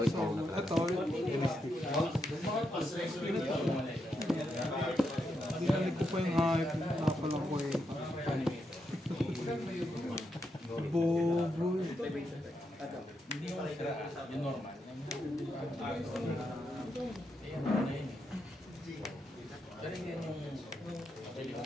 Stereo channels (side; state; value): both; normal; correlation 0.83